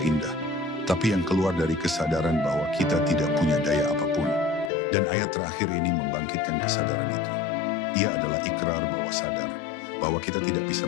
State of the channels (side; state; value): right; drops out; at 4.7 s